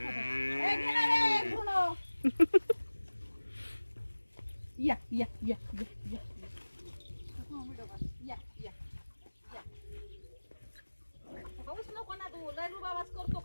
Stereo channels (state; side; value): inverted; both; correlation -1.00